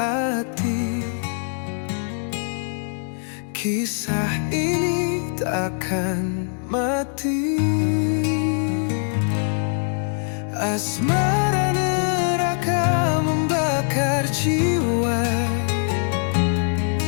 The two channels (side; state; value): right; silent; digital silence